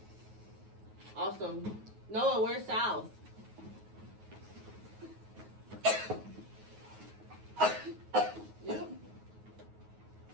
Awesome. Noah, where's south? Yep.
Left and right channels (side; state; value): left; late; 9.4 ms